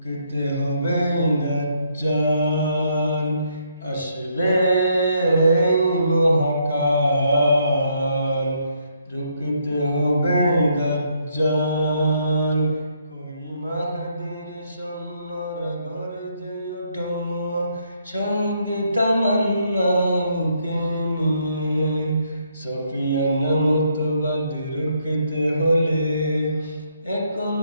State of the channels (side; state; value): both; inverted; correlation -0.73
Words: হবে দাজ্জাল। আসবে মহাকাল, রুকতে হবে দাজ্জাল। কই মাহদীর সৈন্যরা গর্জে ওঠো, সঙ্গে তামান্না বুকে নিয়ে। সফিয়ান মতবাদ রুখতে হলে এখন